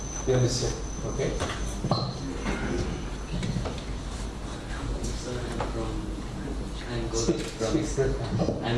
You understand? Okay.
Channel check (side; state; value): both; identical; correlation 1.00